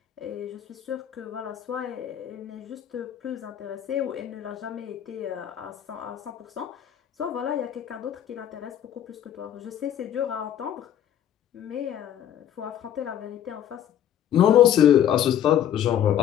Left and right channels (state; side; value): quieter; right; 10.4 dB